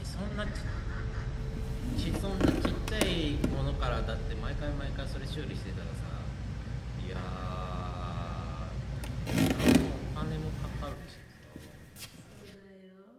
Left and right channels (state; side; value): identical; both; correlation 1.00